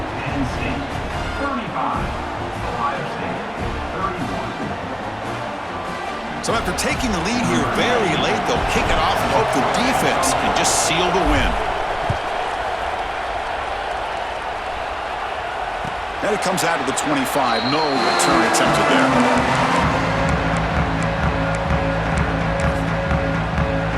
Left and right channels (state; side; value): identical; both; correlation 1.00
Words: Penn State 35, Ohio State 31. So after taking the lead here very late, they'll kick it off and hope the defense can just seal the win. And it comes out to the 25. No return attempted there.